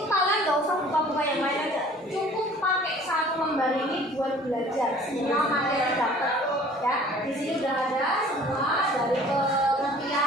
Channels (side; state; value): both; normal; correlation 0.50